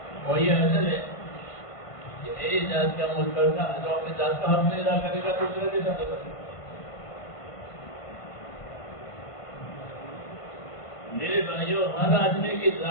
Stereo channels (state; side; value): late; right; 1.5 ms